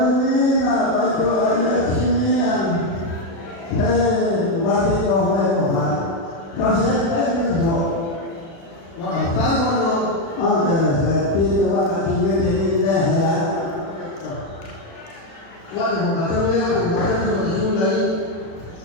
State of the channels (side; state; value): right; late; 36 ms